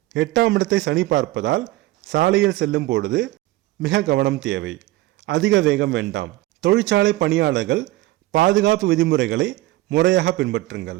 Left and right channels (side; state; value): left; quieter; 17.8 dB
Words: 8ஆம் இடத்தை சனி பார்ப்பதால் சாலையில் செல்லும் பொழுது மிக கவனம் தேவை. அதிக வேகம் வேண்டாம். தொழிற்சாலை பணியாளர்கள் பாதுகாப்பு விதிமுறைகளை முறையாக